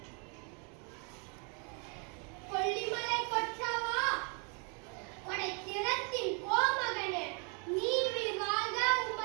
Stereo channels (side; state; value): left; quieter; 36.6 dB